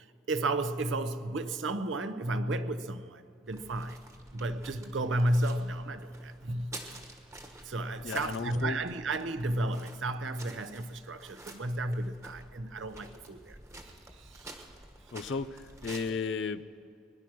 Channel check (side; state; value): both; normal; correlation 0.63